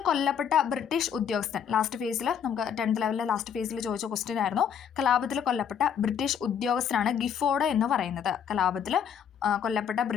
കൊല്ലപ്പെട്ട ബ്രിട്ടീഷ് ഉദ്യോഗസ്ഥൻ, ലാസ്റ്റ് ഫേസിൽ നമുക്ക് 10th ലെവലിലെ ലാസ്റ്റ് ഫേസിൽ ചോദിച്ച ക്വസ്റ്റ്യൻ ആയിരുന്നു. കലാപത്തിൽ കൊല്ലപ്പെട്ട ബ്രിട്ടീഷ് ഉദ്യോഗസ്ഥനാണ് ഗിഫോർഡ് എന്ന് പറയുന്നത്. കലാപത്തിൽ കൊല്ലപ്പെട്ട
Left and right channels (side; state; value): right; quieter; 8.0 dB